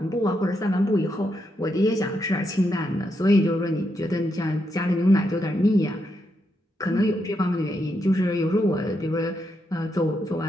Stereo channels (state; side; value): normal; both; correlation 0.81